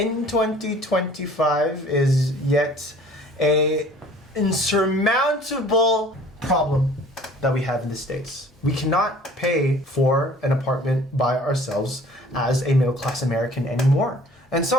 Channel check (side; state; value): both; normal; correlation 0.51